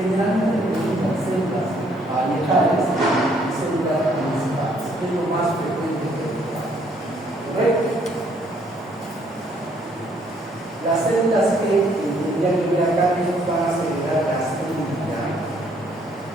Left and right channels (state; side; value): normal; both; correlation 0.66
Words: preguntan células parietales y células principales, que es lo más frecuente de preguntar. ¿Correcto? Las células que tendrían que ver acá que nos van a secretar gastrina.